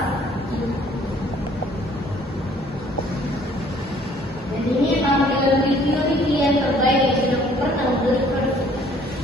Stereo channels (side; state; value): both; normal; correlation 0.58